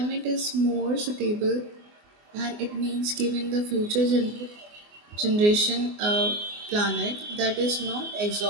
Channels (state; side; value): late; left; 24 ms